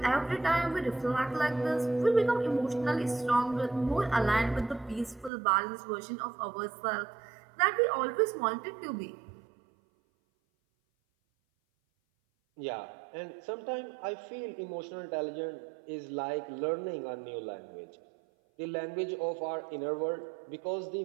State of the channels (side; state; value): left; drops out; at 5.3 s